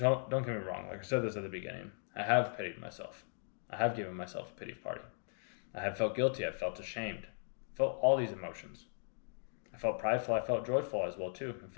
get me wrong, like I said this at the beginning, I have pitied myself. I have given myself a pity party. I have felt guilty. I've felt ashamed. I felt all these emotions. I felt prideful. I felt joyful as well too. I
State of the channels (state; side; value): silent; right; digital silence